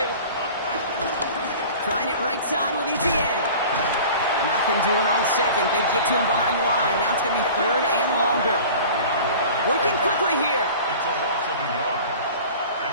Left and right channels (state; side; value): inverted; both; correlation -0.41